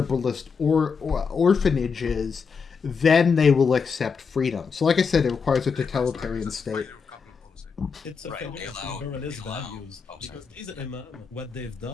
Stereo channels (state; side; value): quieter; right; 5.6 dB